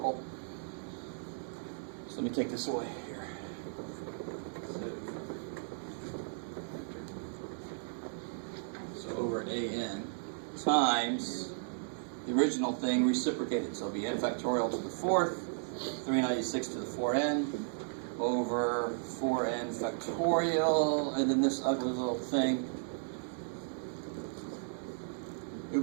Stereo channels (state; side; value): silent; left; digital silence